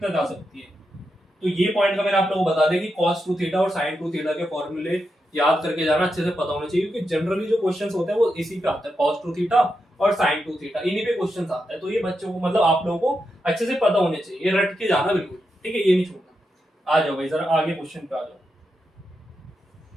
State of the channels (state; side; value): normal; both; correlation 0.86